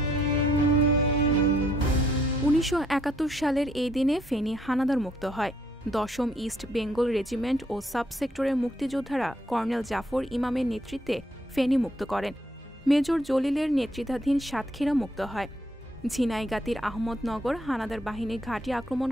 ১৯৭১ সালের এই দিনে ফেনী হানাদার মুক্ত হয়। ১০ম ইস্ট বেঙ্গল রেজিমেন্ট ও সাবসেক্টরের মুক্তিযোদ্ধারা কর্নেল জাফর ইমামের নেতৃত্বে ফেনী মুক্ত করেন। মেজর জলিলের নেতৃত্বাধীন সাতক্ষীরা মুক্ত হয়। ঝিনাইগাতীর আহমদনগর হানাদার বাহিনীর ঘাঁটি আক্রমণ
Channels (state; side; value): normal; both; correlation 0.69